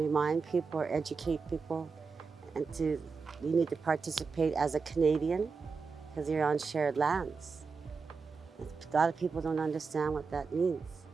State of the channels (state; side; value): quieter; left; 4.9 dB